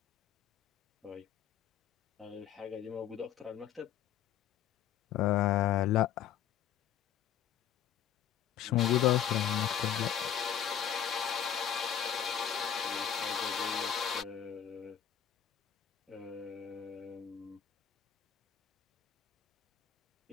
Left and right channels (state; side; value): quieter; right; 9.5 dB